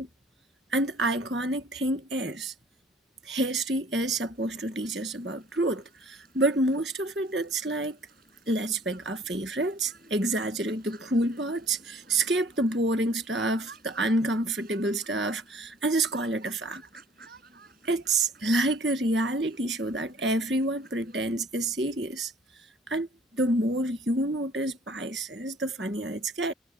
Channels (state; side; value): normal; both; correlation 0.54